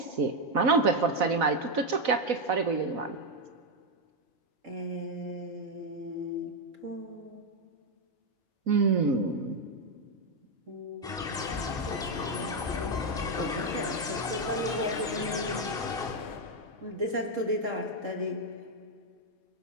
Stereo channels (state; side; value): normal; both; correlation 0.03